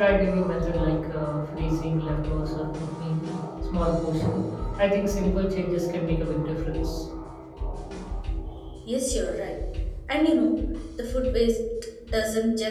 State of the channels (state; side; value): identical; both; correlation 1.00